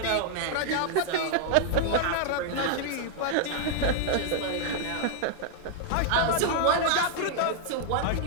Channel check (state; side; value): different; both; correlation 0.00